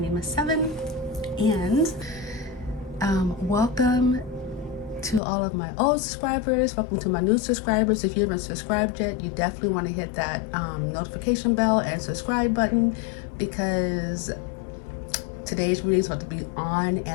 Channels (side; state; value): right; drops out; at 5.2 s